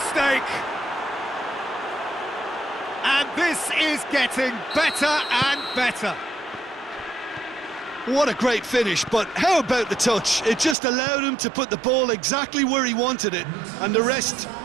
And this is getting better and better. What a great finish, but how about the touch? It just allowed him to put the ball exactly where he wanted it, and the rest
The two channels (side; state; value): left; drops out; at 10.8 s